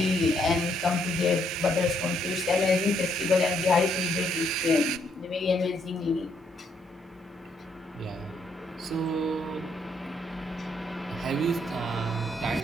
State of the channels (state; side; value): normal; both; correlation 0.72